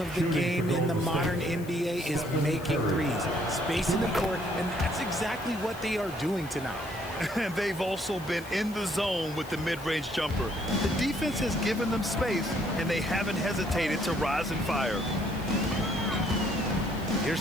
of the game in the modern NBA is making threes, spacing the court, and that's exactly what they are doing tonight. And they've also been in the zone with the mid-range jumper. The defense has given them space, and they haven't hesitated to rise and fire. Here's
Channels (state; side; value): noise; left; hiss, 20 dB below the sound